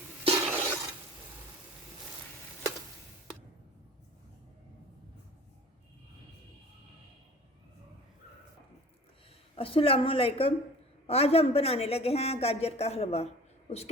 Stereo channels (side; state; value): both; normal; correlation 0.44